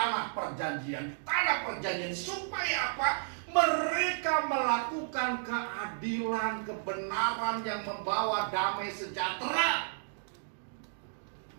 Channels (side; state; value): left; silent; digital silence